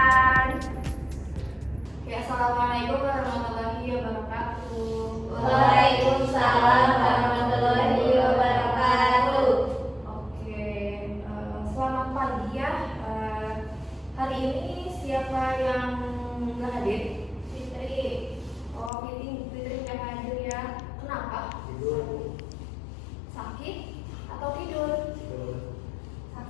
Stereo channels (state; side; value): drops out; right; at 18.9 s